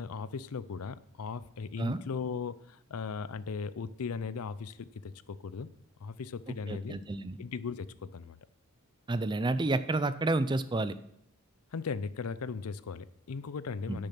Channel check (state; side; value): normal; both; correlation 0.54